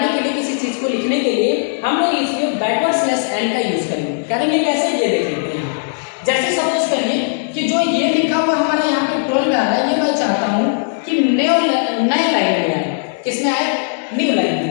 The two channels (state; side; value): silent; right; 68 dB below the other